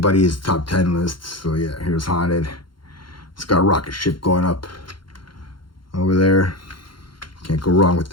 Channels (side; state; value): right; late; 0.72 ms